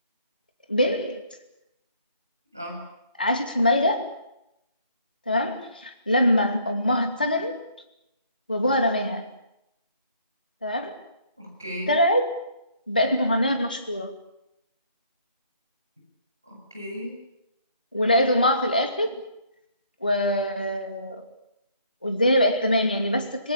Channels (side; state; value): both; inverted; correlation -0.63